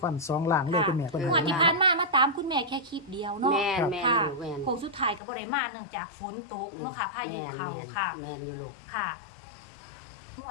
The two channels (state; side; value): drops out; right; at 5.2 s